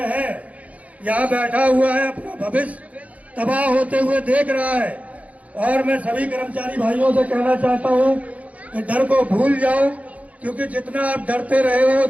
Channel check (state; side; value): late; left; 0.069 ms